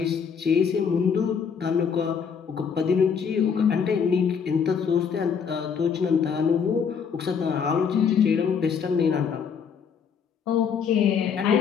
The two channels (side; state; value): right; quieter; 6.7 dB